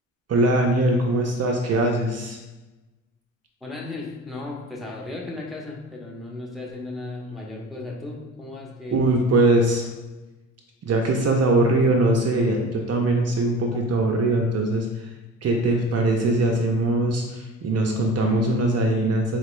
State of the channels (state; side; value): normal; both; correlation 0.38